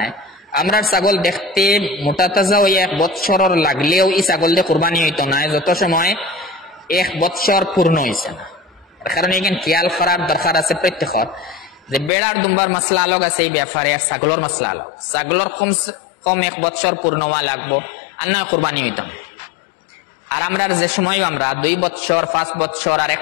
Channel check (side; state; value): right; drops out; at 12.1 s